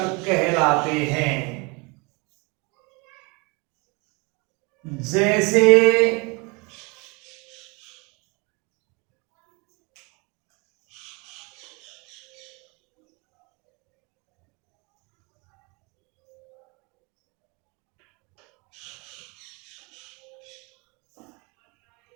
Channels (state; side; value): quieter; left; 29.0 dB